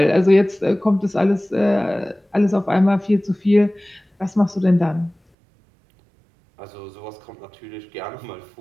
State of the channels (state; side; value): drops out; left; at 5.2 s